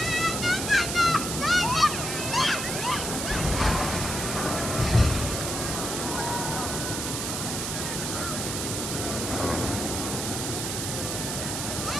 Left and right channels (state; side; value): noise; right; hiss, 3 dB below the sound